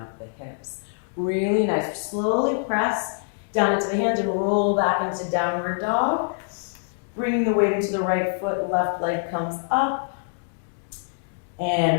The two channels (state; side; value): silent; right; digital silence